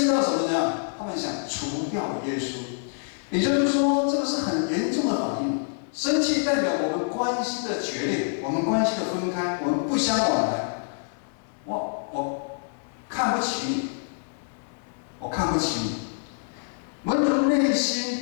到什么呢？他们想除掉耶稣。也就是说，这个是很严重的反应。生气代表我们关系的决裂，我们关系的分开，我们不相往来。我看不起你，我看不起你。门徒内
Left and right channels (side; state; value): right; silent; digital silence